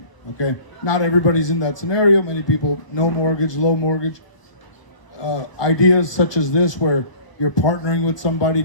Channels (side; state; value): right; late; 1.2 ms